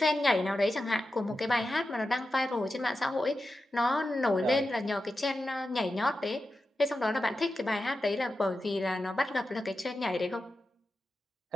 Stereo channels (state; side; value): normal; both; correlation 0.91